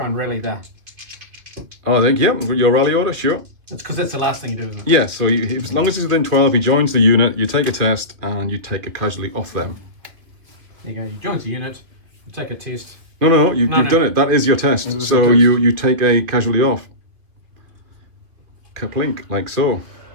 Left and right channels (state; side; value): late; left; 2.7 ms